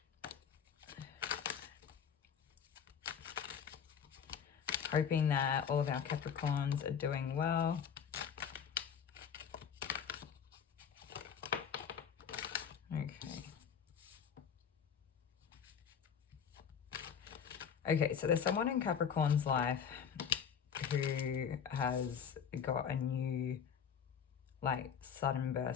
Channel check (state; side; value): quieter; right; 7.6 dB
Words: Hoping that all of our Capricorns are doing well. Okay, so there's someone in Capricorn's life who has got a new, like, sudden